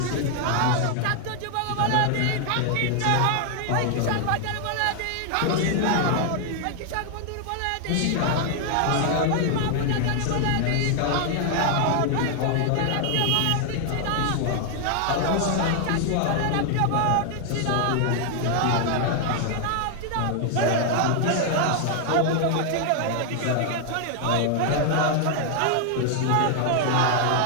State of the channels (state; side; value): different; both; correlation 0.00